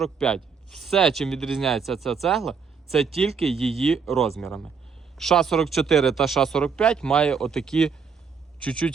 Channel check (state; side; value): quieter; left; 5.8 dB